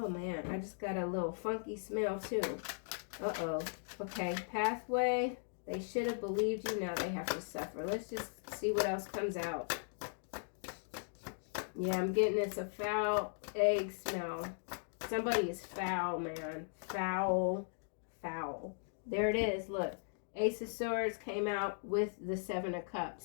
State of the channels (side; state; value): right; silent; digital silence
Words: man, I just got a little funky smell too. Uh-oh. Okay, pathway. They should have believed you. Now they have to suffer. Let's just see what else comes out. Yeah, I'm getting this a foul egg smell. Somebody is foul, man. Foul. Foul. There it is. Look. Ace of Swords came out with the Seven of